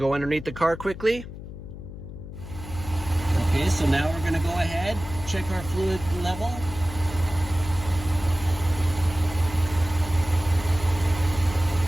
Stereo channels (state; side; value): noise; left; hum, 12 dB below the sound